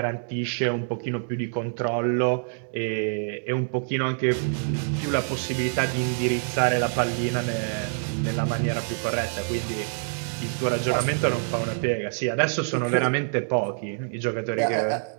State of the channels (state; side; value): silent; left; 61 dB below the other